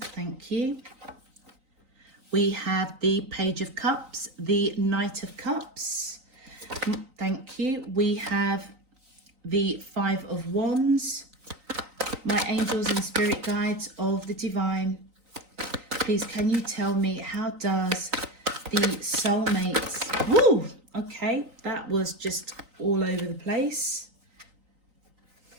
thank you. We have the Page of Cups, the Knight of Cups. Thank you. We have the Five of Wands. My angels and spirit guides of the divine, please can you tell me, how does the soulmates... Woo! Okay, that was just all over the place.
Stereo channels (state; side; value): late; left; 3.9 ms